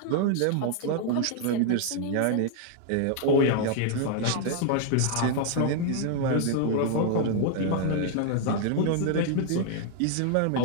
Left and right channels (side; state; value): both; different; correlation 0.00